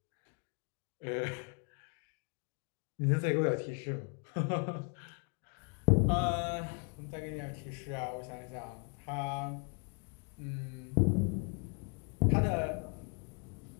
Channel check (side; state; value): right; quieter; 34.3 dB